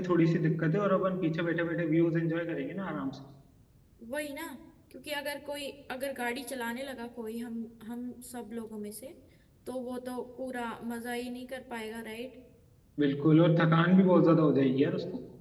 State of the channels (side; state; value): both; identical; correlation 1.00